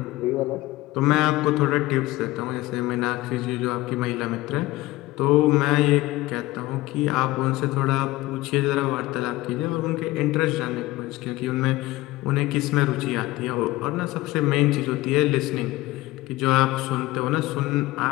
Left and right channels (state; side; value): quieter; right; 18.6 dB